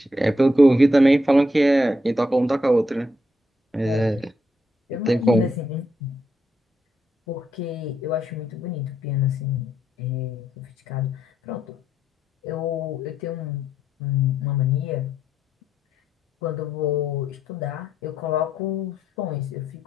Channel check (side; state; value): both; normal; correlation 0.78